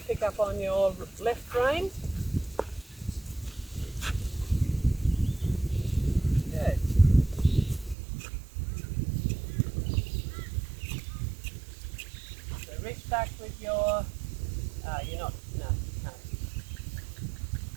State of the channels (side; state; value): left; drops out; at 8.0 s